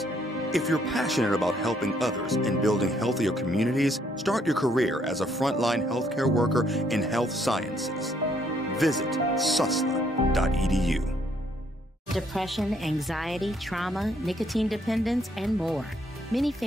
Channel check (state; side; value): normal; both; correlation 0.69